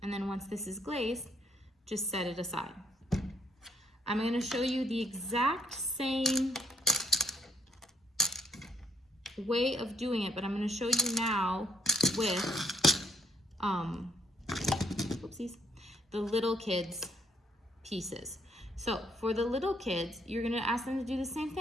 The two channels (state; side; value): normal; both; correlation 0.68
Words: And then once this is glazed, just set it aside. I'm gonna show you the exact same way of doing it, but I'm gonna show you now with, whoopsies, the little kids pieces. So for the little kids, you're gonna ask them to do the same